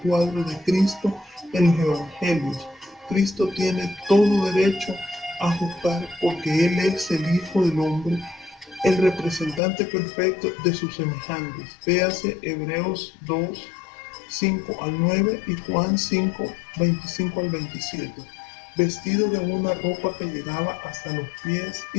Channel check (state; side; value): drops out; right; at 9.6 s